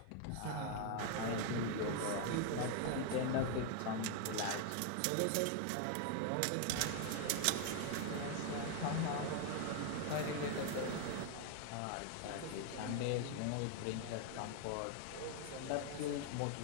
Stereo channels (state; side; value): different; both; correlation 0.00